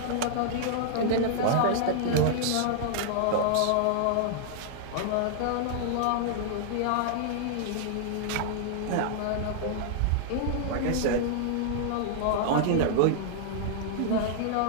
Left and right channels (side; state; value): both; different; correlation -0.01